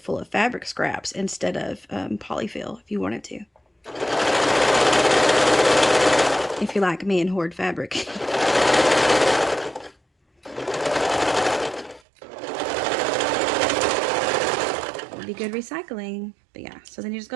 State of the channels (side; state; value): left; drops out; at 12.0 s